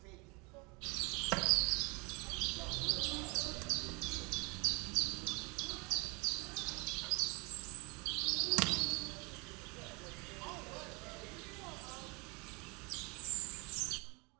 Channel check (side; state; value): left; quieter; 29.2 dB